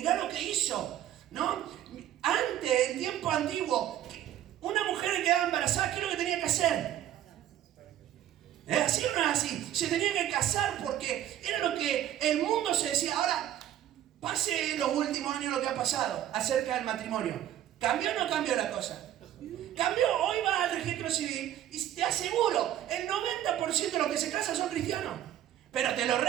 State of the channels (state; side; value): quieter; left; 11.9 dB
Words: lo que hizo, ¿no? Antes, en tiempo antiguo, una mujer que quedaba embarazada, ¿qué es lo que tenía que hacer? ¿Es así o no es así? Se tenía que casar porque era lo que el mundo se decía. Ahora, pase en los últimos años lo que ha pasado acerca del matrimonio. ¿Cambió o no cambió la cosa? Cambió. Hoy vas al registro civil y te aseguro, el 90% de los que se casan son cristianos. Pero te lo